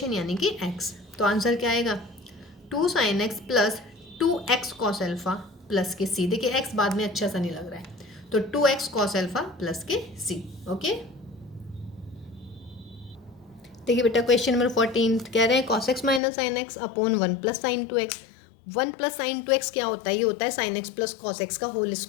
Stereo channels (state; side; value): drops out; right; at 16.2 s